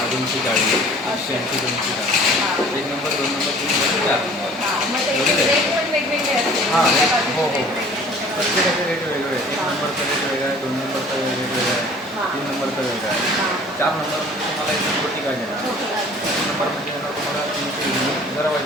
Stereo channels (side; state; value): both; normal; correlation 0.50